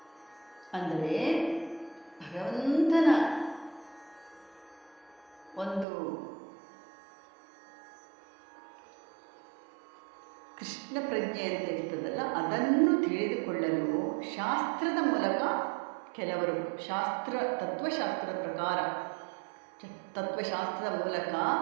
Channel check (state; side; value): drops out; left; at 5.9 s